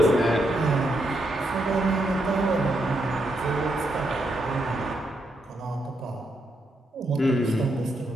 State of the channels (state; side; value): normal; both; correlation 0.80